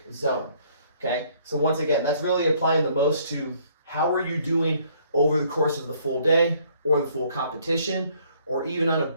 zone, okay? So once again, that's really applying the most to how are you doing over the course of the full day or the full competition, or even on a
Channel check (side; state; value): both; inverted; correlation -0.63